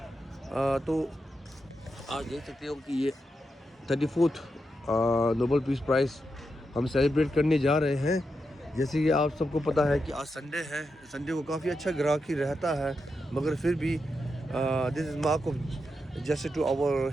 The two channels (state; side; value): normal; both; correlation 0.86